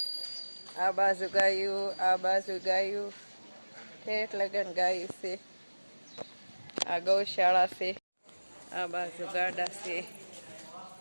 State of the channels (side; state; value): both; inverted; correlation -1.00